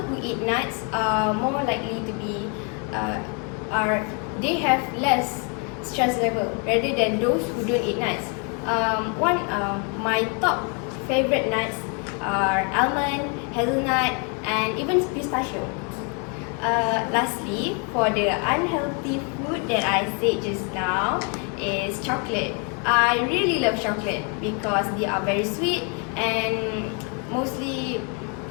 eat nuts are more likely to be they have less stress level rather than those who don't eat nuts. My top favorite nuts are almond, hazelnut, and even pistachio. Lastly, for the unhealthy food that I said just now is chocolate. I really love chocolate because they are very sweet, and most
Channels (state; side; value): quieter; right; 36.6 dB